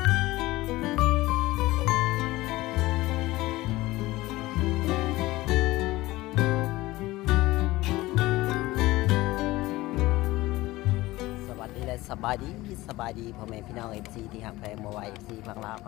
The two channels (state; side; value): quieter; right; 18.7 dB